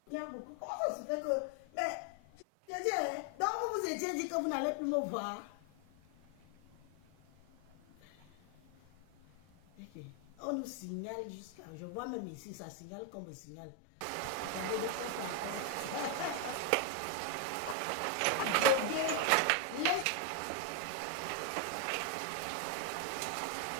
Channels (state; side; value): different; both; correlation 0.01